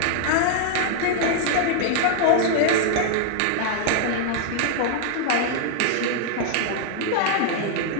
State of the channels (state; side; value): different; both; correlation -0.01